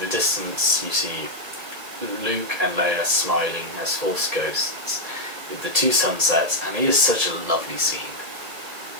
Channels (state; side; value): late; left; 1.7 ms